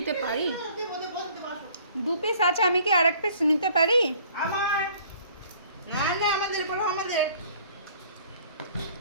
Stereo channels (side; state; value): both; inverted; correlation -0.55